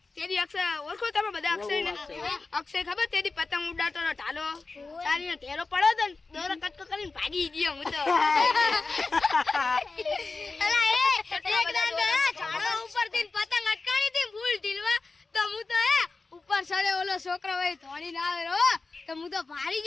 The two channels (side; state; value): right; quieter; 3.8 dB